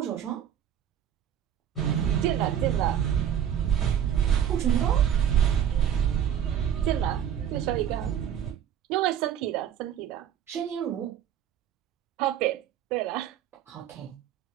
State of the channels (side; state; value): left; quieter; 9.7 dB